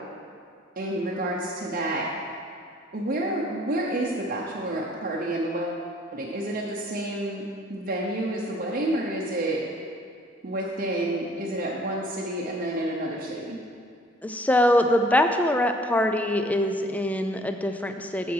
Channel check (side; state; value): both; normal; correlation 0.56